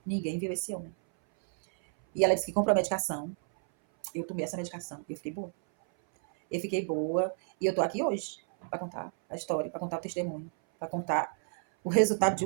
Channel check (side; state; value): left; silent; 57 dB below the other